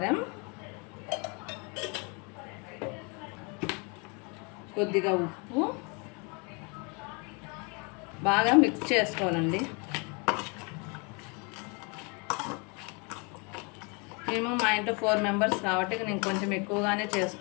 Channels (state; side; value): quieter; right; 32.3 dB